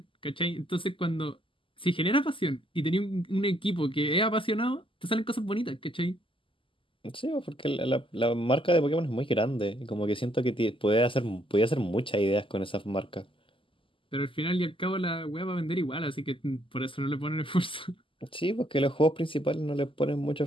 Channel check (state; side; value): late; right; 0.25 ms